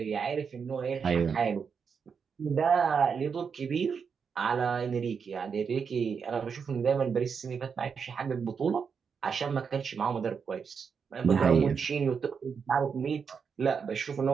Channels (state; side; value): quieter; left; 6.2 dB